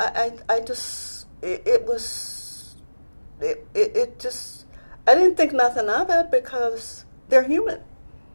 didn't think nothing of it because they're human,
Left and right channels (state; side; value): inverted; both; correlation -1.00